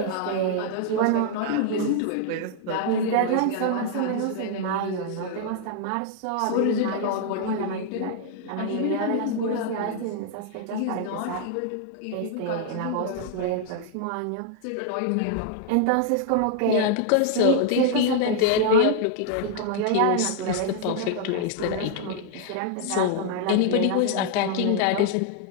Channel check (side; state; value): both; different; correlation 0.00